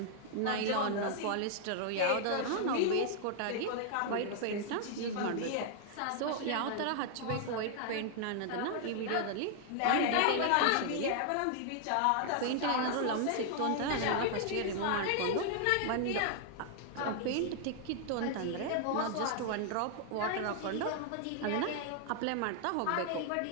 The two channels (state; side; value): different; both; correlation 0.00